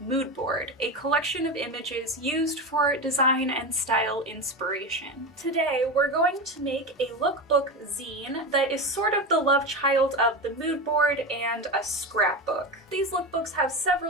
mood board, a collection of images used for design and style inspiration. Today, we're going to make a lookbook zine that is sort of the love child of the mood board and a scrapbook. These lookbooks have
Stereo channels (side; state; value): both; normal; correlation 0.20